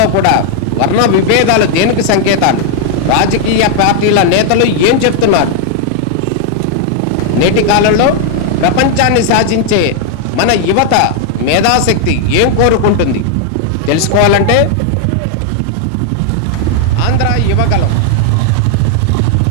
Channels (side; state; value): both; different; correlation 0.00